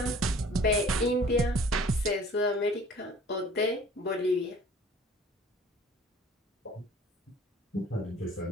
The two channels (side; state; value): both; normal; correlation 0.50